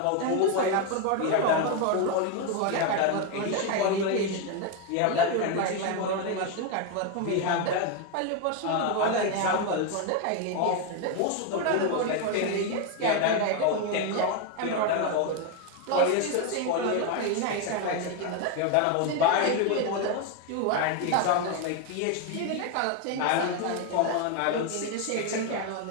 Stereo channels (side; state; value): both; different; correlation 0.02